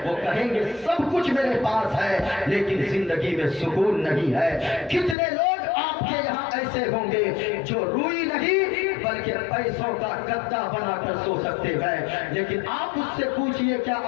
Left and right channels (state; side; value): drops out; right; at 5.2 s